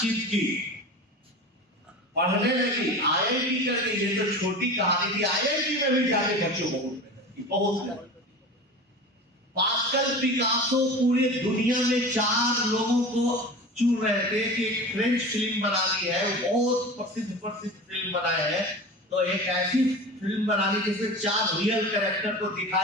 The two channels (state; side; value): normal; both; correlation 0.33